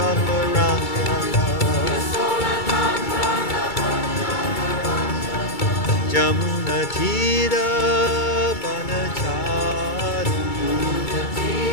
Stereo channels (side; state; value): right; late; 2.3 ms